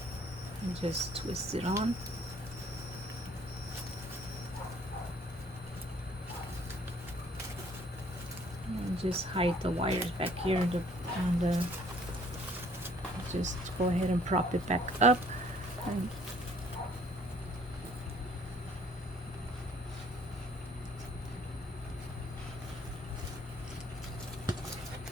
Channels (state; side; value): normal; both; correlation 0.59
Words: And just twist it on. And just hide the wires back here, and just go ahead and prop it back up. And